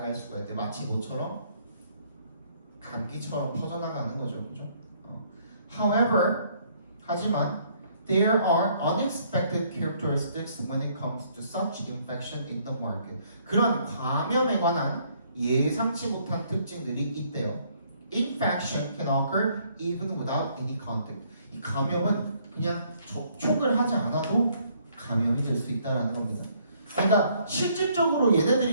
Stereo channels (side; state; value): both; inverted; correlation -0.66